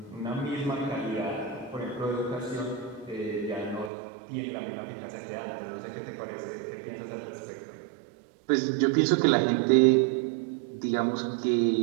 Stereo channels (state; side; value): drops out; left; at 3.9 s